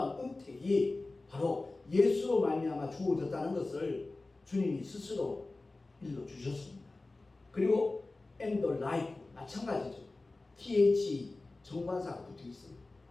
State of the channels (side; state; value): right; quieter; 3.2 dB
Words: 은택이 바로 예수로 말미암아 주어졌다는 것을 주님이 스스로 일러주셨습니다. 그리고 and the life 마찬가지죠. TH 정관사가 붙어 있어요.